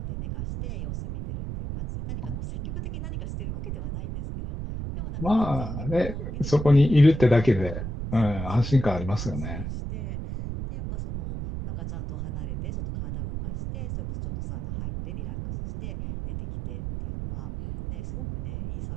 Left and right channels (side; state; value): right; noise; rumble, 5 dB below the sound